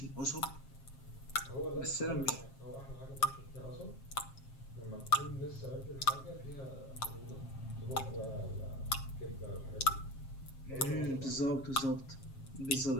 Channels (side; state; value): right; late; 7.4 ms